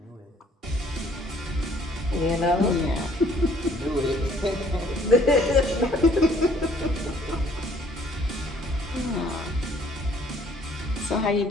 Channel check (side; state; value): both; normal; correlation 0.60